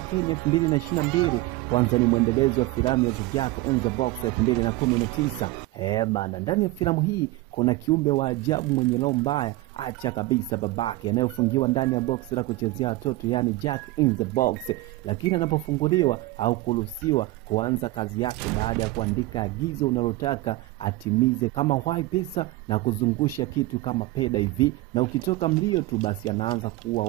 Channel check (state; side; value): quieter; left; 18.7 dB